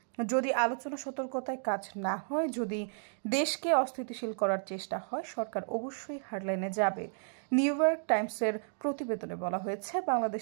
যদি আলোচনা সতর্কতায় কাজ না হয়, যদি দেশকে অস্থিতিশীল করার চেষ্টা হয়, সরকার অবশ্যই হারলাইনে যাবে। নিউ ইয়র্ক টাইমসের প্রতিবেদনে বলা হয়েছে,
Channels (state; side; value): silent; left; digital silence